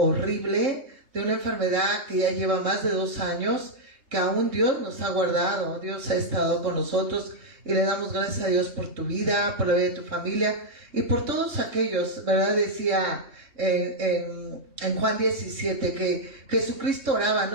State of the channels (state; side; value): late; left; 3.6 ms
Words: de una enfermedad que ya lleva más de 2 años, que aún Dios nos ha guardado, Dios ha estado con nosotros, y le damos gracias a Dios por tu vida, por la vida de tu familia, y por todos aquellos, ¿verdad? Decía en Juan 17 que Jesucristo oraba